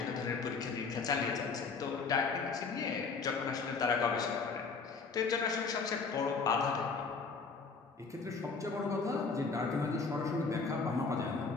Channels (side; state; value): right; quieter; 4.7 dB